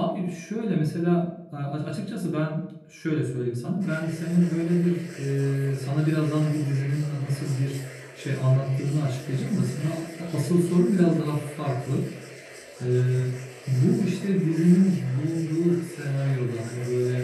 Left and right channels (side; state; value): both; identical; correlation 1.00